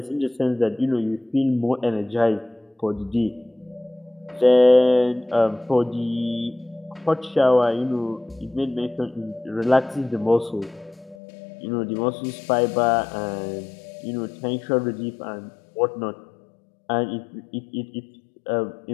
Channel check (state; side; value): drops out; right; at 11.2 s